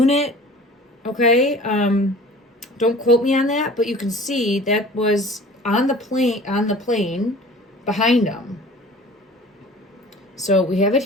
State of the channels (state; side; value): normal; both; correlation 0.44